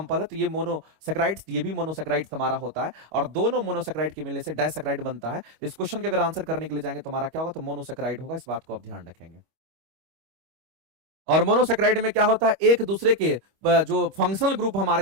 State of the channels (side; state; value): left; late; 25 ms